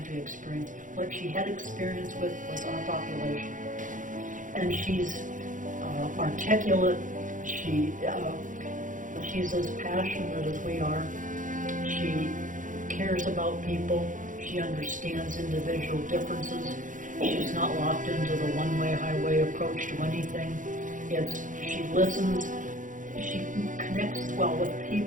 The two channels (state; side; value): late; left; 0.38 ms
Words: experience. What she had experience with was our population. And she's articulate. She's as passionate as we are. She cares about people. She understands individual differences. She's not locked into the one-way highway approach to anything. She listens. She connects well with